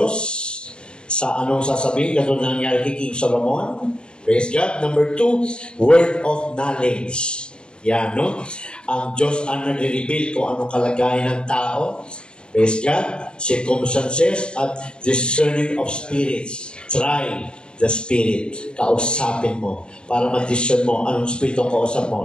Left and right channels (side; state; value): right; late; 0.051 ms